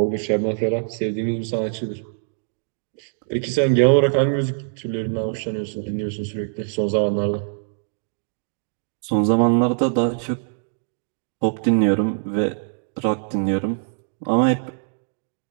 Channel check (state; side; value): silent; left; digital silence